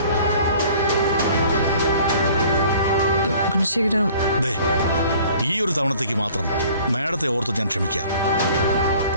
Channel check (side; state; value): both; inverted; correlation -0.51